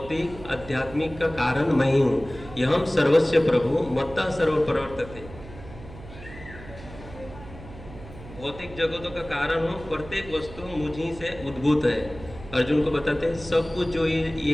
आध्यात्मिक का कारण मैं ही हूँ। यहम सर्वस्य प्रभु मत्ता सर्व प्रवर्तते, भौतिक जगतों का कारण हूँ, प्रत्येक वस्तु मुझी से उद्भूत है। अर्जुन को बताते हैं सब कुछ जो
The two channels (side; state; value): right; noise; hum, 16 dB below the sound